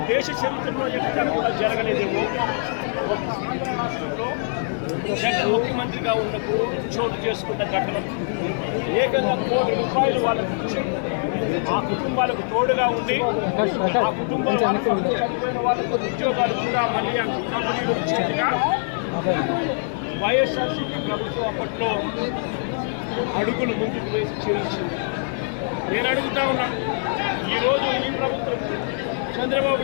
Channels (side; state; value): right; silent; digital silence